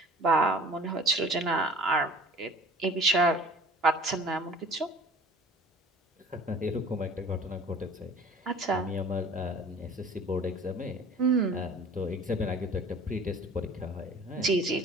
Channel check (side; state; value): both; normal; correlation 0.46